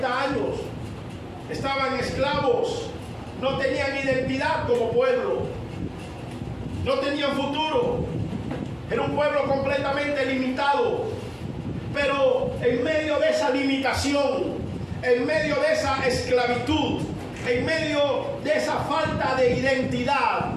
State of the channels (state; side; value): identical; both; correlation 1.00